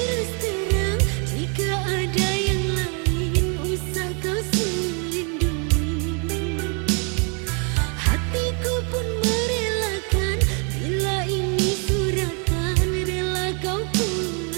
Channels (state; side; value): quieter; left; 37.2 dB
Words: terang, jika ada yang lain usah kau selindungi. Hatiku pun merelakan, bila ini suratan rela kau pun